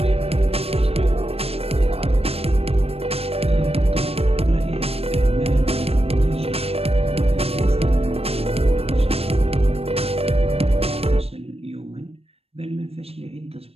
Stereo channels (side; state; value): left; late; 0.29 ms